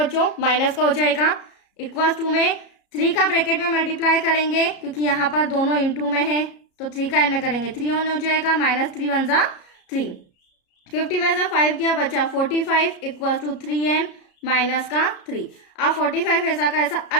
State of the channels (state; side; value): late; right; 33 ms